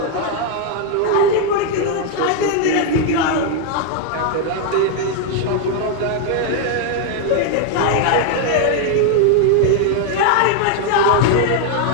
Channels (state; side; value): different; both; correlation 0.01